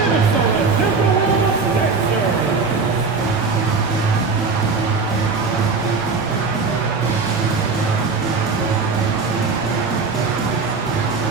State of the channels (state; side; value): quieter; left; 4.5 dB